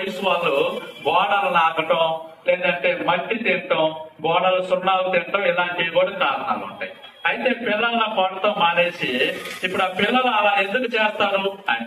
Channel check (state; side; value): identical; both; correlation 1.00